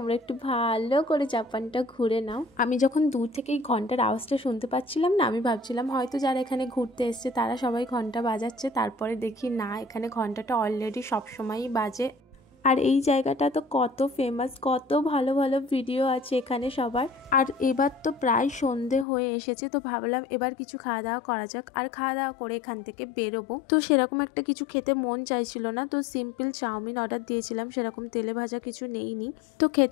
একটু ভালো করে জাপানটা ঘুরে নাও। আমি যখন দূর থেকে এই ঘন্টার আওয়াজটা শুনতে পাচ্ছিলাম না, আমি ভাবছিলাম হয়তো যারা এখানে ঘুরতে এসছে তারা সবাই ঘন্টা বাজাচ্ছে। তারপরে দেখি না, এখানে ঘন্টাটা অলরেডি সবসময়ই বাজে। আর এই জায়গাটা তো কত ফেমাস, কত ভালো ভালো ভিডিও আছে এখানে সবার। আর এবার তো প্রায় সন্ধে হয়ে এসেছে, তো ভাবলাম এবার কিছু খাওয়া দাওয়া করা যাক। আর খাওয়া দাওয়া করে এখান থেকে বেরোবো। তো সেরকম একটা কিছু খেতে মন চাইছিল না, তো সিম্পল চাউমিন অর্ডার দিয়েছিলাম, সেরকম তেলে ভাজা কিছু নেইনি। তো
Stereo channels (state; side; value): drops out; right; at 19.1 s